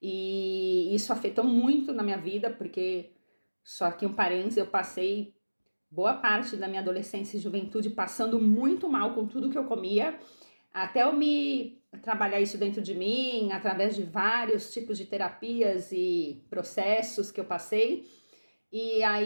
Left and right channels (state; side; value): inverted; both; correlation -1.00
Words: E isso afetou muito na minha vida, porque, só que um parênteses, eu passei boa parte da minha adolescência e juventude passando muito mal com tudo que eu comia, até eu me trabalhar isso dentro de mim, através de vários tipos de terapias e processos que eu passei. E